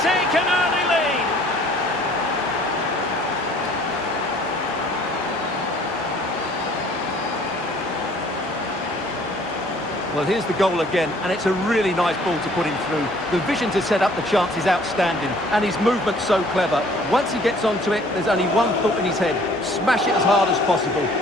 take an early lead. Well, here's the goal again, and it's a really nice ball to put him through. The vision to set up the chance is outstanding, and his movement's so clever. Once he gets onto it, there's only one thought in his head. Smash it as hard as possible.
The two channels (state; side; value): normal; both; correlation 0.56